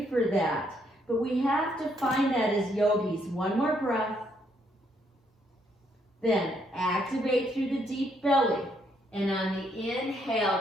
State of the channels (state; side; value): normal; both; correlation 0.73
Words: for that, but we have to find that as yogis. One more breath. Then activate through the deep belly. And on the inhale,